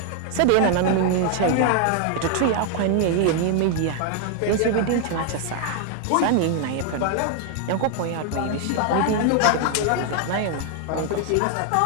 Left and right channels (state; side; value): different; both; correlation 0.00